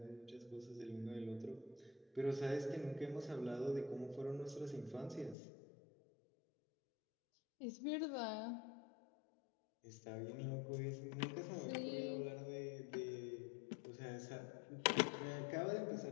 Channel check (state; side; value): drops out; right; at 5.4 s